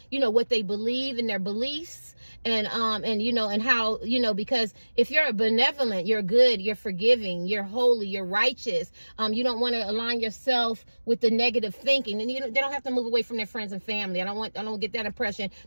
you know, what they believe and their beliefs. And you know, and how, you know, because if you're benevolent, you're good, you're forgiving, you're holy, you're righteous, you don't want to align yourself with the negative thinking. And they don't have to move away from their friends and family. I don't get that impression,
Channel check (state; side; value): inverted; both; correlation -1.00